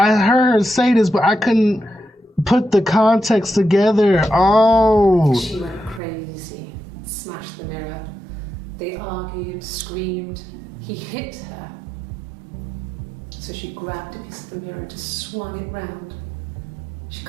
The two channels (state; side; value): drops out; left; at 6.0 s